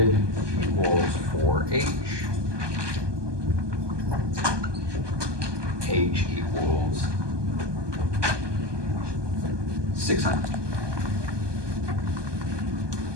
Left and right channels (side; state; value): left; late; 1.2 ms